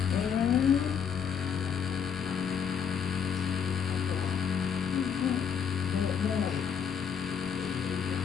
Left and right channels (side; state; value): right; quieter; 7.4 dB